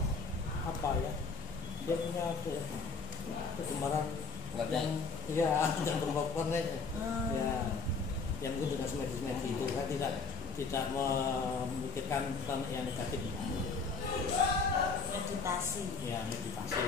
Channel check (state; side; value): quieter; right; 4.8 dB